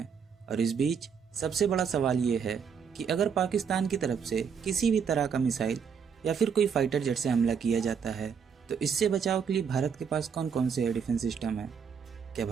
और इस बीच सबसे बड़ा सवाल ये है कि अगर पाकिस्तान की तरफ से किसी भी तरह का मिसाइल या फिर कोई फाइटर जेट से हमला किया जाता है तो इससे बचाव के लिए भारत के पास कौन कौन से एयर डिफेंस सिस्टम है। क्या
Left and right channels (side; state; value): left; quieter; 6.7 dB